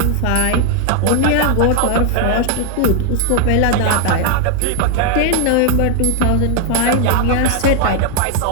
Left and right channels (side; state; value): both; different; correlation 0.00